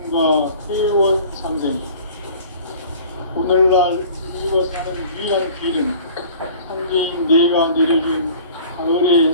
회원 상생. 오늘날 우리가 사는 유일한 길은 상제인 내가 내려준 가을의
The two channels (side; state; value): both; inverted; correlation -0.46